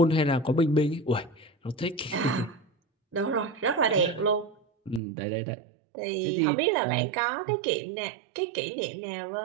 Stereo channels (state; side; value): drops out; left; at 5.0 s